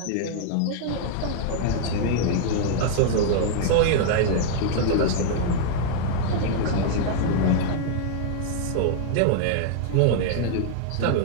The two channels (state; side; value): different; both; correlation 0.00